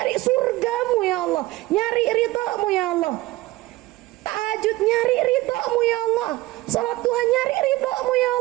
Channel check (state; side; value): quieter; left; 18.5 dB